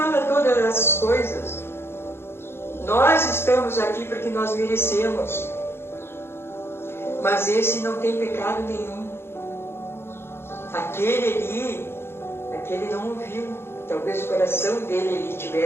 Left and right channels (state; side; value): late; right; 0.12 ms